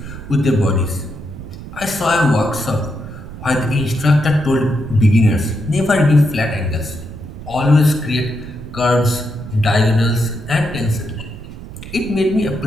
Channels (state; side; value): noise; right; rumble, 13 dB below the sound